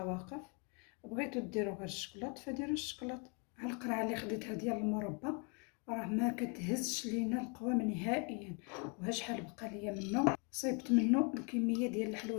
واقف. بغيتو ديروا غير الشكلاط فديروا الشكلاط. ها القرعه اللي خديتها ديال المربى راه ما كتهزش لينا القوام نهائيا. وها شحال بقى ليا منه، صيبت منه الكميه ديال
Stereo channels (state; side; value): quieter; right; 35.3 dB